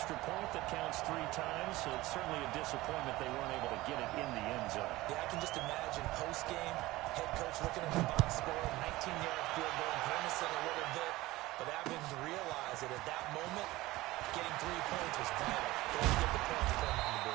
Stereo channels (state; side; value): quieter; left; 18.6 dB